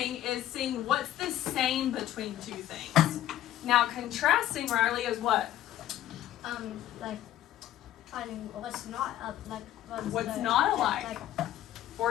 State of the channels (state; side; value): quieter; right; 12.9 dB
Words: is seeing what's the same between two things. Now contrasting, Riley, is what? Like finding what's not What's not alike